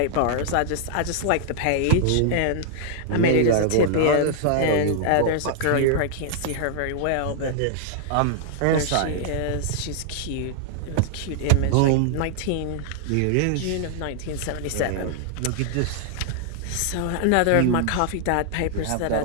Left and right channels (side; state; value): both; different; correlation -0.01